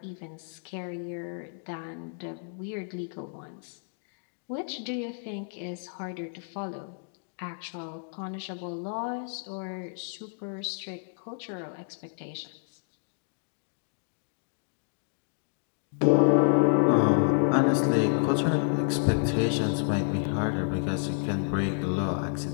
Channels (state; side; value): silent; right; digital silence